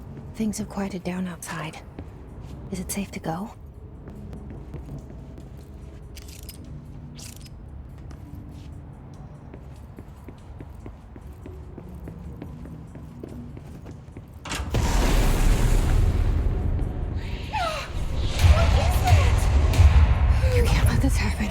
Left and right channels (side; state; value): both; identical; correlation 1.00